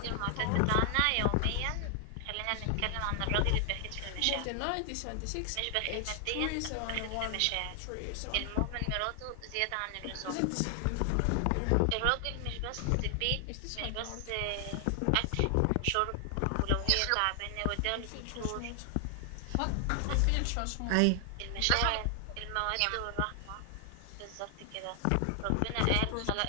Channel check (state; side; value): different; both; correlation 0.00